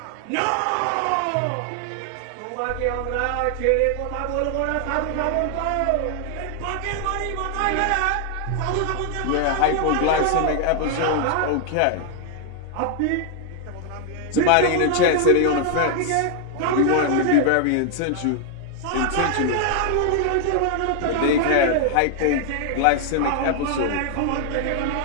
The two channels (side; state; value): both; different; correlation 0.00